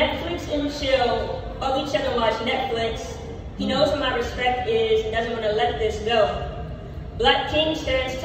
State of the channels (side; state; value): both; identical; correlation 1.00